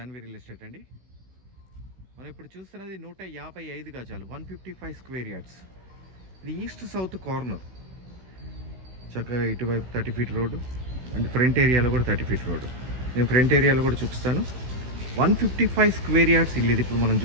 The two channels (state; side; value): late; left; 16 ms